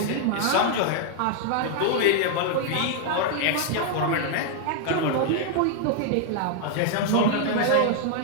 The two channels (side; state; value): both; different; correlation 0.00